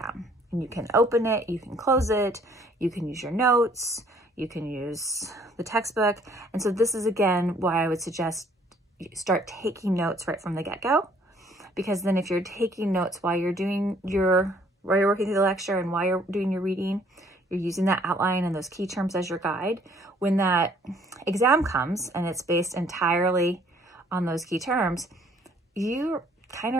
And you can open it, you can close it, you can use your notes, you can use the textbook. And so this is, again, why I would suggest you start taking notes right from the get-go, because then if you're taking notes while you're working through the lecture and while you're doing your reading, you're using that outline and those key terms as your guide. When that exam comes and it's based entirely on those key terms, you kind of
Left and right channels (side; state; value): both; normal; correlation 0.61